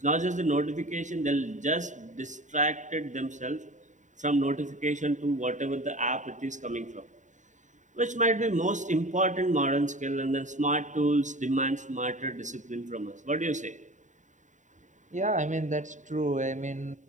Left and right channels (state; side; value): late; left; 0.36 ms